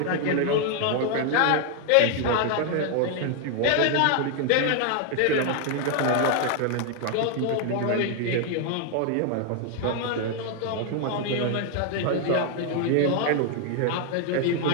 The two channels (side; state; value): both; different; correlation 0.00